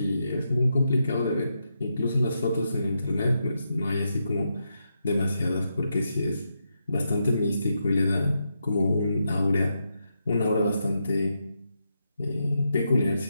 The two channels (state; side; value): inverted; both; correlation -0.84